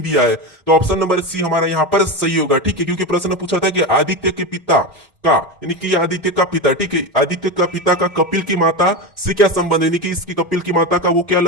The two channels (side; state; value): both; normal; correlation 0.18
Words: दिया है, तो ऑप्शन नंबर सी हमारा यहाँ पर सही होगा, ठीक है। क्योंकि प्रश्न पूछा था कि आदित्य के पिता का, यानी कि आदित्य का पिता, ठीक है, आदित्य का पिता का कपिल की माता से क्या संबंध है, यानी कि इसकी कपिल की माता का वो क्या